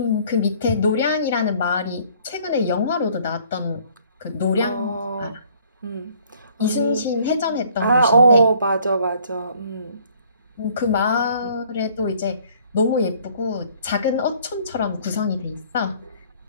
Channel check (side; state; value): both; inverted; correlation -0.58